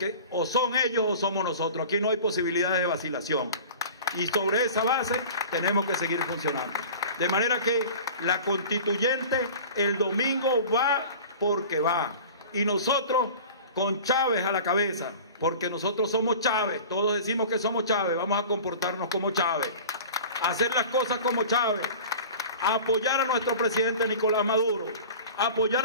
o son ellos o somos nosotros. Aquí no hay posibilidades de vacilación. Y sobre esa base tenemos que seguir funcionando. De manera que la constituyente el domingo va porque va. Y nosotros con Chávez a la cabeza, porque nosotros somos Chávez, todos decimos que somos Chávez, vamos a comportarnos como Chávez, hacer las cosas como Chávez, apoyar a nuestro presidente Nicolás Maduro,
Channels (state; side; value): inverted; both; correlation -0.39